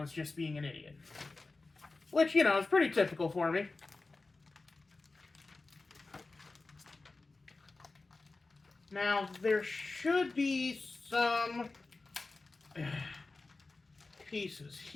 just being an idiot. Which, you know, is pretty typical for me. Now, there should be some pieces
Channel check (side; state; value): right; quieter; 3.5 dB